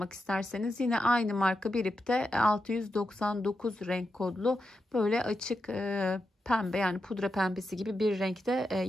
isterseniz yine aynı marka bir ipte 699 renk kodlu böyle açık pembe, yani pudra pembesi gibi bir renkte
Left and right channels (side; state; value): both; normal; correlation 0.87